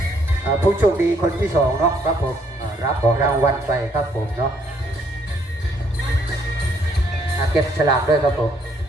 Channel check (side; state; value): both; normal; correlation 0.68